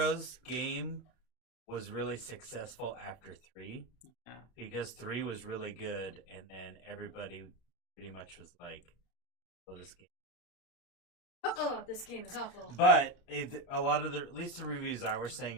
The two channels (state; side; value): late; right; 32 ms